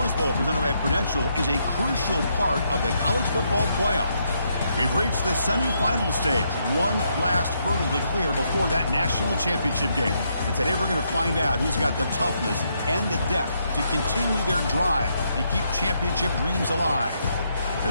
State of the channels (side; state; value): both; inverted; correlation -0.77